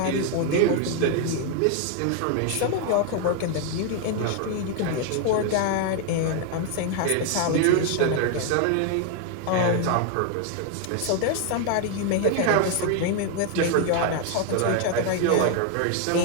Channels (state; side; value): different; both; correlation 0.00